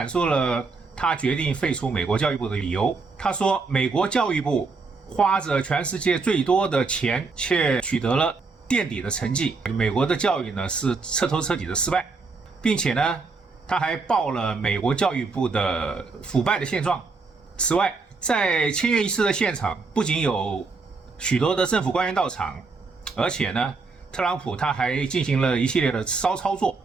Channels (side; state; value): left; quieter; 4.2 dB